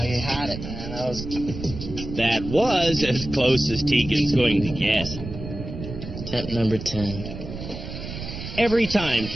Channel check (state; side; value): noise; right; rumble, 9 dB below the sound